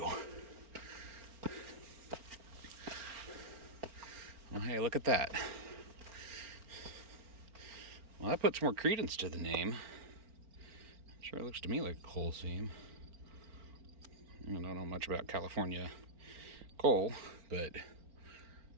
Well, hey, look at that. Well, that puts more credence to the name. Sure looks to me like a coal seam. I don't know much about California coal, but it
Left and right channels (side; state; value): left; late; 4.4 ms